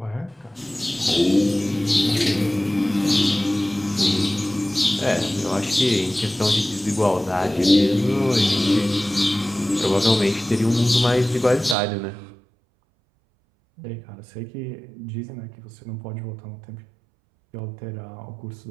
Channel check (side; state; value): left; drops out; at 11.8 s